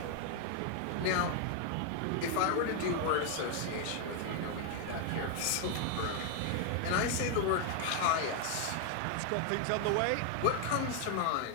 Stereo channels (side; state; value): both; different; correlation 0.00